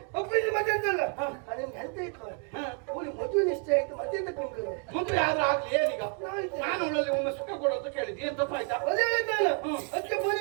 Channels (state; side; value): quieter; left; 37.2 dB